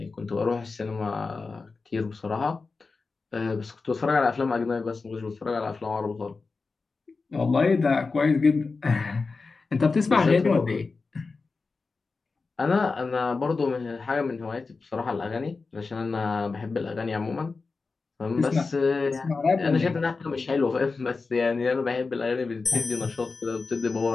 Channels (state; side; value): quieter; right; 4.2 dB